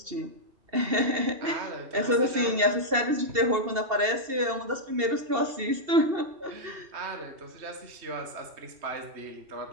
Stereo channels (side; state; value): left; late; 2.7 ms